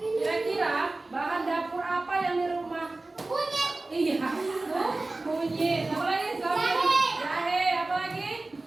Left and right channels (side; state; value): left; quieter; 3.1 dB